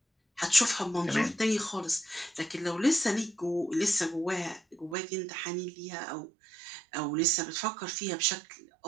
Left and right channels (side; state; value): left; drops out; at 5.0 s